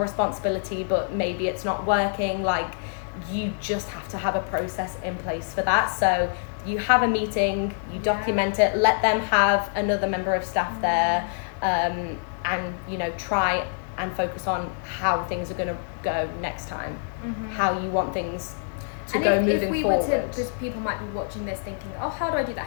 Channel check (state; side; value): silent; right; digital silence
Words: but maybe it's not working, like you just have to have a process in place for that. So you have a meeting, you document it, let them have another member of staff there, and try and focus on how things are going to go next time, how you want things to go moving forward. Because people might be watching this thinking, oh, how do I do that?